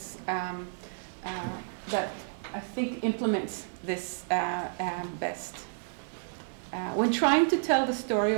that I think implements this best. When trying to tell the story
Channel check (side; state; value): left; silent; digital silence